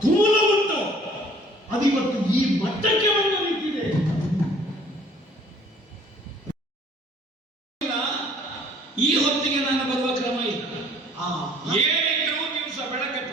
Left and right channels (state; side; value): normal; both; correlation 0.55